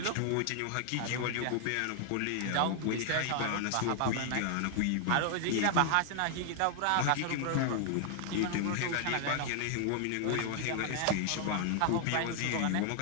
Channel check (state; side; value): different; both; correlation 0.00